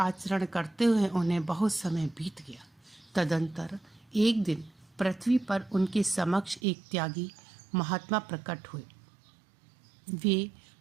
करते हुए उन्हें बहुत समय बीत गया। तदंतर एक दिन पृथ्वी पर उनके समक्ष एक त्यागी महात्मा प्रकट हुए। वे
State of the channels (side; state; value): left; drops out; at 6.6 s